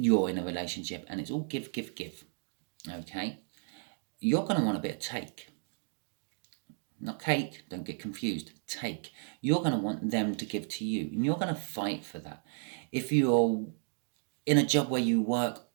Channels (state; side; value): silent; left; 56 dB below the other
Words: in a relationship and it's all give. Okay, you're going to want a bit of take. Not cake, don't get confused. Take. You're going to want them to give to you, and you're going to fight for that. If you're in a job where you work